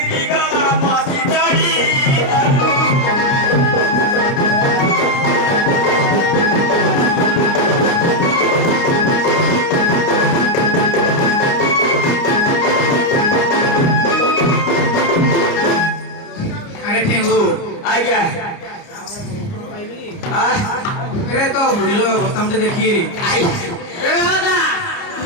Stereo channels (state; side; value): late; right; 29 ms